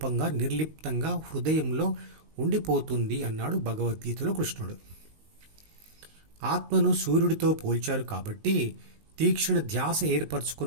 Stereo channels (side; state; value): left; late; 19 ms